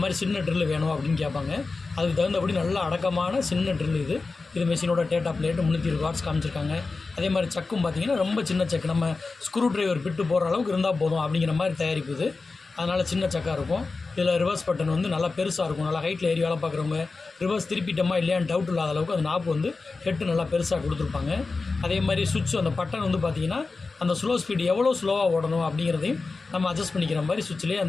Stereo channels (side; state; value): right; quieter; 3.9 dB